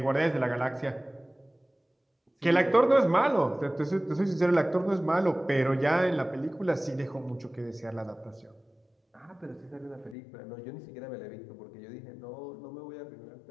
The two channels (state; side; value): drops out; right; at 10.2 s